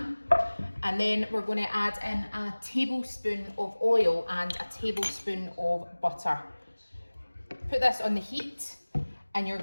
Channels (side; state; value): both; inverted; correlation -1.00